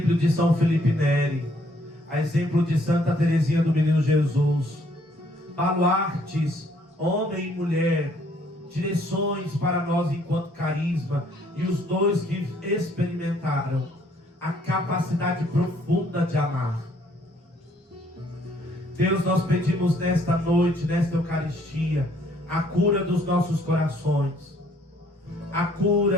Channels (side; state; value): both; normal; correlation 0.64